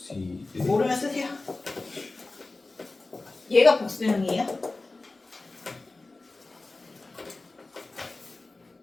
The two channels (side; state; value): right; quieter; 3.3 dB